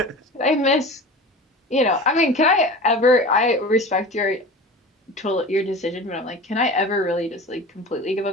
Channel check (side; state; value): both; normal; correlation 0.35